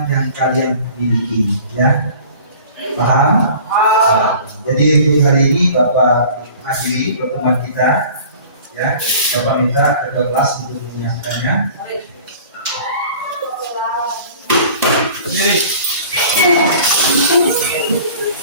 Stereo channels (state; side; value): inverted; both; correlation -0.45